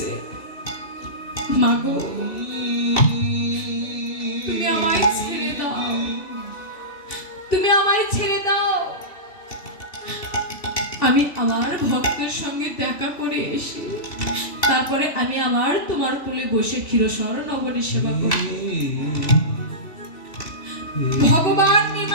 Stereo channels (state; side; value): late; right; 2.7 ms